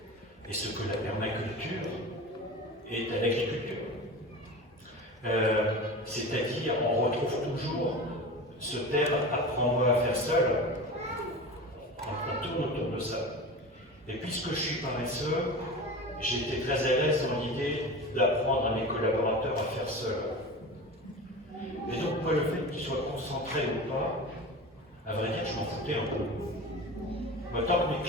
et ce que la permaculture est à l'agriculture. C'est-à-dire, on retrouve toujours Ce terme « apprends-moi à faire seul », on tourne autour de ça. Et puisque je suis paresseux, j'ai été très à l'aise dans l'idée d'apprendre à mes collaborateurs à faire seul. Et donc, moi, le fait qu'ils soient concentrés ou pas, à vrai dire, je m'en foutais un peu. Moi, tant que mes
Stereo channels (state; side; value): normal; both; correlation 0.31